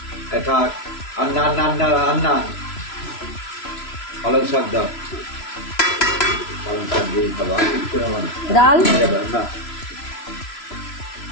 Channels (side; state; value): right; late; 3.0 ms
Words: থাক আন্না আন্না আন্না আন্না পালং শাক দাও, পালং শাক দিয়ে খাবো। ডাল